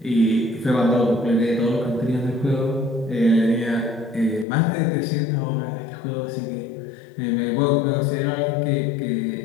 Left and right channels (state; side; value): drops out; right; at 4.5 s